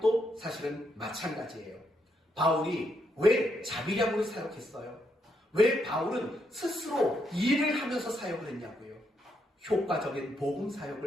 사실은 마찬가지예요. 바울이 왜 자비량으로 사역했어요? 왜 바울은 스스로 일을 하면서 사역을 했냐고요? 효과적인 복음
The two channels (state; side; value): normal; both; correlation 0.78